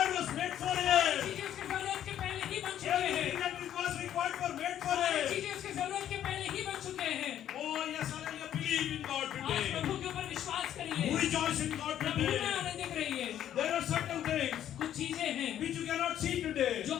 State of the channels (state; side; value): quieter; right; 10.9 dB